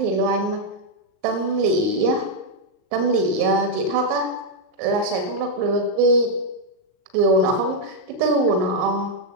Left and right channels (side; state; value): left; late; 39 ms